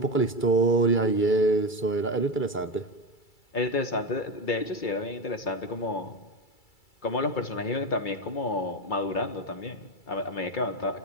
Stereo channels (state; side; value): late; right; 2.3 ms